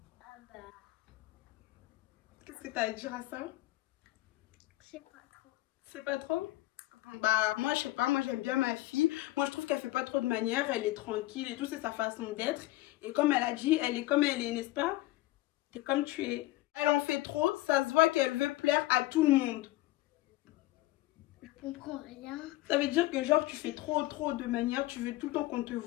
Qu'est-ce que tu as à dire à ça? Je sais pas trop. C'est pas trop? Moi, je sais pas. Moi, j'aime bien ma fille. Moi, je trouve qu'elle fait pas trop de manières. Elle est tranquille et tout. C'est sa façon d'être. Et comme elle a dit, elle est comme elle est, n'est-ce pas? T'es comme tu es. Elle en fait trop. Ça se voit qu'elle veut plaire à tout le monde. Je comprends rien. Ça veut dire que genre tu fais trop de manières, tu veux tout le temps qu'on te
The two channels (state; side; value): quieter; right; 17.5 dB